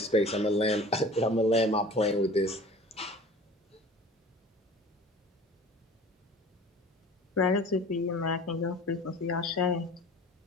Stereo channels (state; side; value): normal; both; correlation 0.43